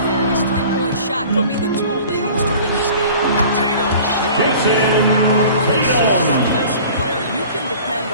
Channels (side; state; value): both; inverted; correlation -0.45